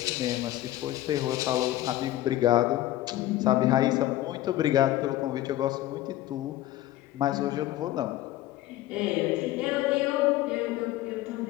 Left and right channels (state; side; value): quieter; right; 14.9 dB